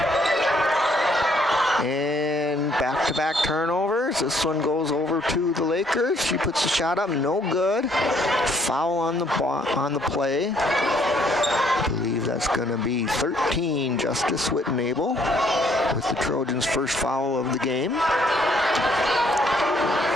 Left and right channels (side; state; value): both; normal; correlation 0.66